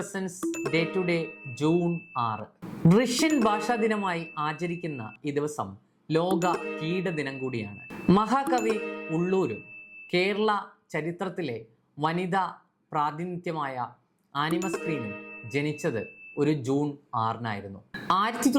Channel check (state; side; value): identical; both; correlation 1.00